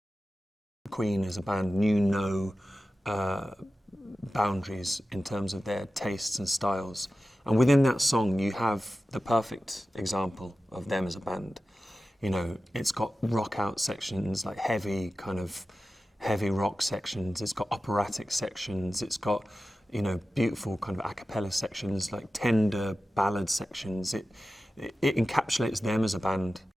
Queen as a band knew no boundaries in terms of their tastes and styles. And within that song, you have the perfect example of them as a band. You know, it's got rock out sections, like heavy rock sections. It's got operatic sections. It's got, you know, beautiful kind of a cappella sections, like tender ballad sections. It encapsulates them as a band.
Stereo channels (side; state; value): both; normal; correlation 0.94